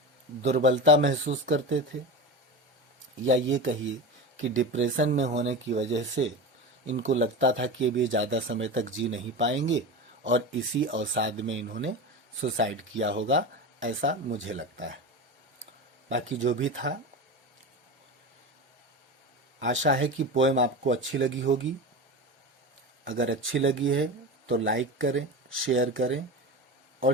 दुर्बलता महसूस करते थे, या ये कहिए कि डिप्रेशन में होने की वजह से इनको लगता था कि अब ये ज़्यादा समय तक जी नहीं पाएंगे और इसी अवसाद में इन्होंने सुसाइड किया होगा, ऐसा मुझे लगता है। बाकी जो भी था, आशा है कि पोएम आपको अच्छी लगी होगी। अगर अच्छी लगी है तो लाइक करें, शेयर करें और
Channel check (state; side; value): normal; both; correlation 0.25